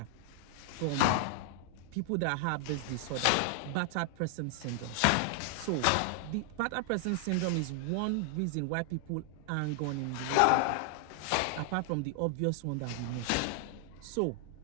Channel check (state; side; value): different; both; correlation 0.00